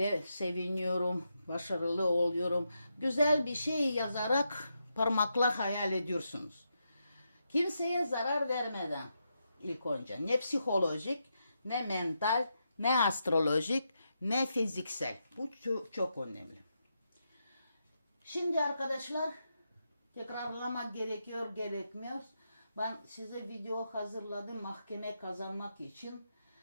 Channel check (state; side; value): inverted; both; correlation -0.84